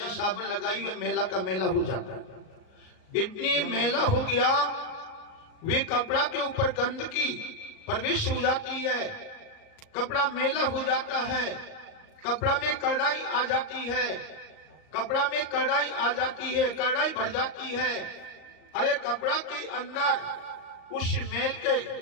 साबुन लगाई, वे मेला का मेला हो जाता है। इतनी मेला हो गया, वे कपड़ा के ऊपर गंदगी प्रवेश हो जाती है, कपड़ा मेला हो जाता है, कपड़ा में कड़ाई आ जाती है, कपड़ा में कड़ाई आ जाती है, कड़ाई भर जाती है। अरे कपड़ा के अंदर उस मेल के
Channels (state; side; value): late; right; 38 ms